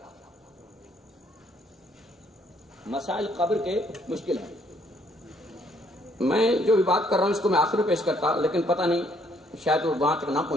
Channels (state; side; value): normal; both; correlation 0.67